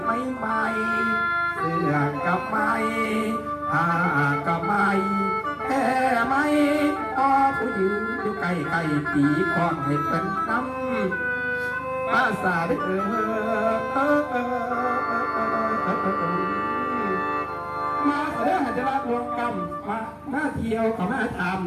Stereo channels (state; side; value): identical; both; correlation 1.00